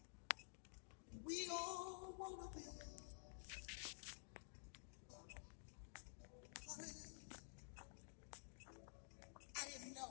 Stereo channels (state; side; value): silent; right; digital silence